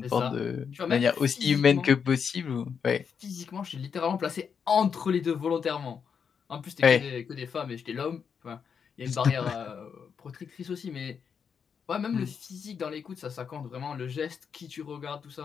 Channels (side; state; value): right; quieter; 6.7 dB